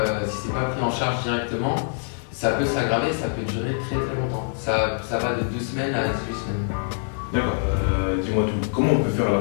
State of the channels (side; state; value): right; silent; 62 dB below the other